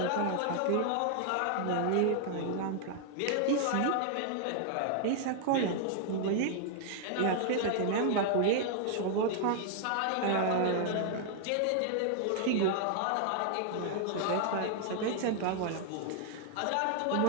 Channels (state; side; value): different; both; correlation 0.00